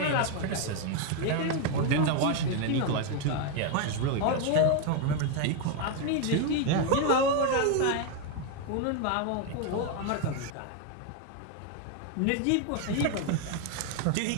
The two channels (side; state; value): both; different; correlation 0.01